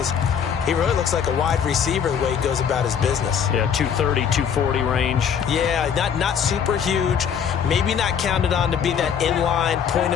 he really looks like a wide receiver the way he goes about his business. Yeah, 230, 240 range. Yeah, not super huge. Maybe not counted on to be that inline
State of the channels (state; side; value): quieter; right; 7.7 dB